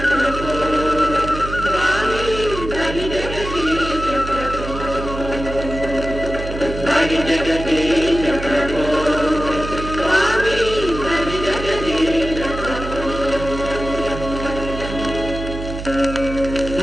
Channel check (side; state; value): right; noise; hum, 8 dB below the sound